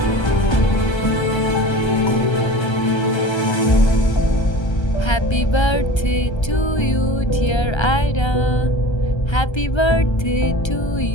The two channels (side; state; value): right; late; 1.3 ms